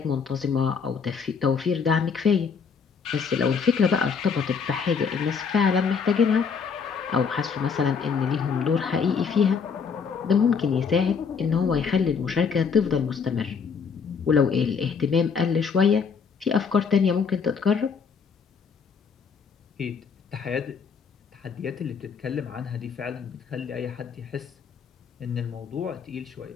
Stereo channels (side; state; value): right; quieter; 6.0 dB